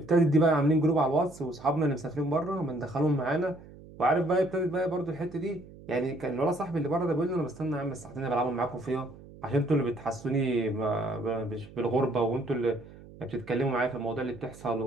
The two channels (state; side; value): noise; right; hum, 19 dB below the sound